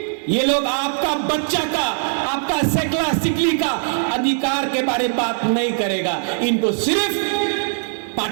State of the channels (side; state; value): left; silent; digital silence